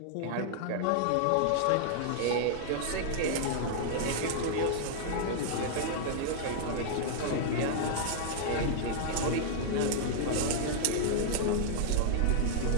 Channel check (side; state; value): both; different; correlation -0.01